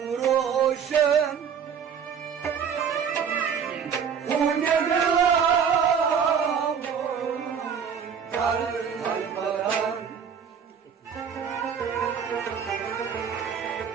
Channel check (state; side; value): quieter; left; 7.2 dB